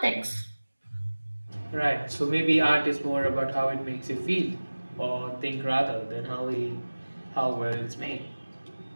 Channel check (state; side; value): inverted; both; correlation -1.00